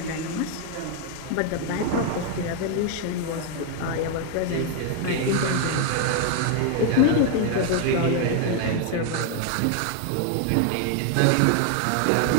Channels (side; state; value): both; different; correlation 0.00